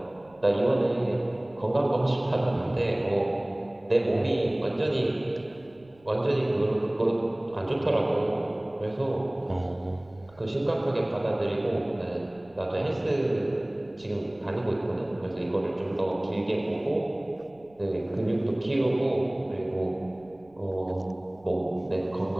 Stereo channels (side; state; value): right; noise; rumble, 29 dB below the sound